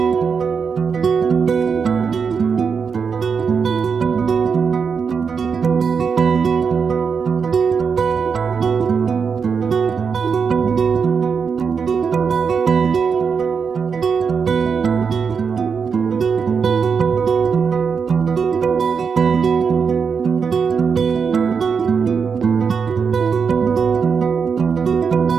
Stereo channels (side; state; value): left; quieter; 6.0 dB